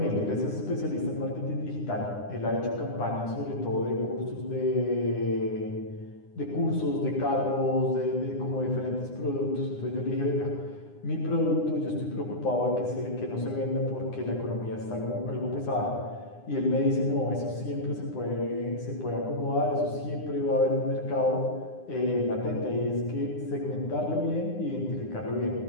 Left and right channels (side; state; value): right; late; 9.8 ms